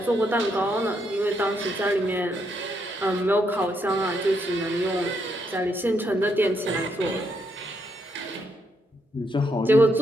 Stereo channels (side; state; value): both; normal; correlation 0.77